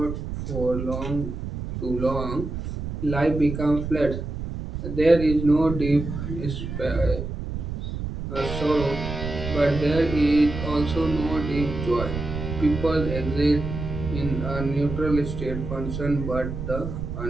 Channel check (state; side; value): noise; right; rumble, 6 dB below the sound